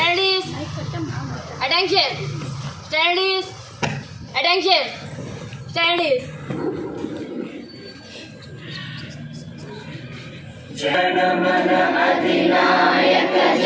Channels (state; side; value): identical; both; correlation 1.00